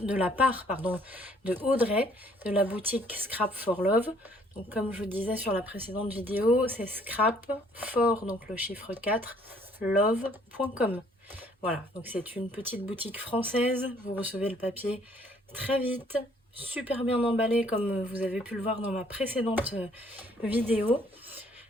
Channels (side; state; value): both; normal; correlation 0.62